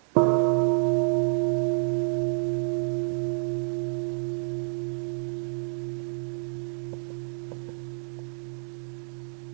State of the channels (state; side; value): silent; left; digital silence